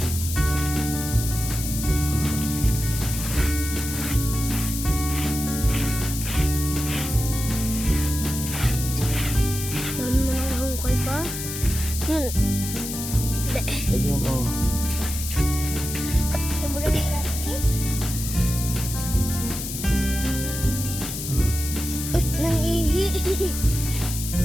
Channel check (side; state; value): left; noise; hiss, 6 dB below the sound